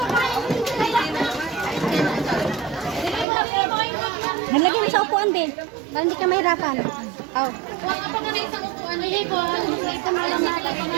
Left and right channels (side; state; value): left; drops out; at 3.2 s